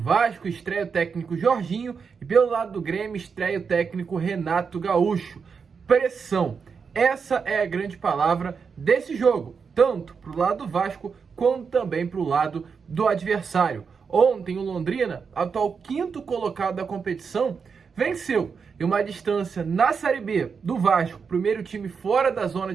estreia o técnico Jorginho, e pelo lado do Grêmio, estreia o técnico Renato Gaúcho. Pressão, essa é a grande palavra desse jogo, tanto para o lado do Vasco, quanto também para o lado do adversário. Ontem o Londrina, atual quinto colocado da competição, venceu em uma distância na Série B do Vasco, primeiro time fora da zona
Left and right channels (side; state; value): left; quieter; 5.8 dB